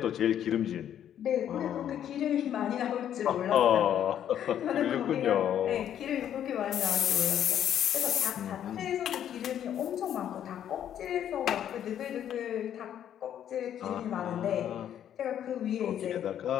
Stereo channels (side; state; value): right; quieter; 10.1 dB